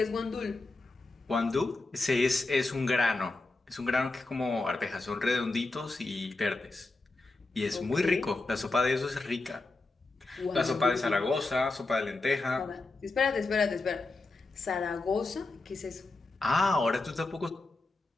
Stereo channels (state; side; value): quieter; right; 3.2 dB